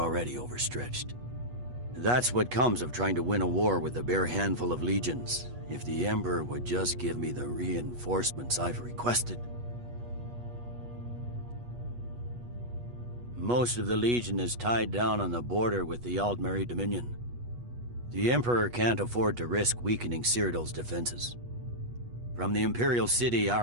overstretched. That's what comes of trying to win a war with a bare handful of legions. If the Emperor would just give me the reinforcements I've requested. Most of the Legion is tied down on the border with the Aldmeri Dominion. The Emperor can't afford to risk weakening Cyrodiil's defenses. From the Imperial City,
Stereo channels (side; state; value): left; late; 8.3 ms